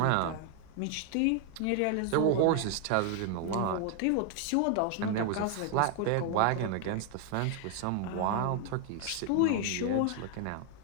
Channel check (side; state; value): both; different; correlation 0.00